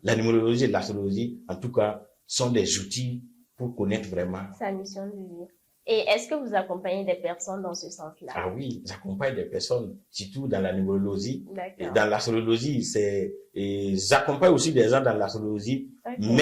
la numérologie et l'astrologie, en tout cas, sont des outils pour connaître vraiment sa mission de vie. Et est-ce que vous accompagnez des personnes dans ce sens-là? Ah oui, j'accompagne des personnes, surtout dans la numérologie. Et dans l'astrologie, j'accompagne aussi des gens dans l'astrologie,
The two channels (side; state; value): both; identical; correlation 1.00